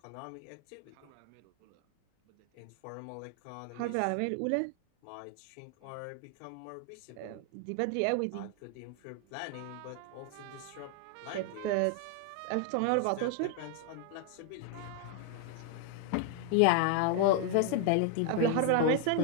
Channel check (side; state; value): both; different; correlation 0.00